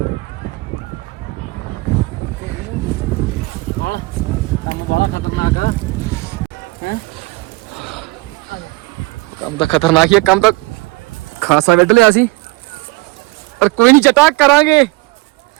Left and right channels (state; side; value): quieter; left; 22.6 dB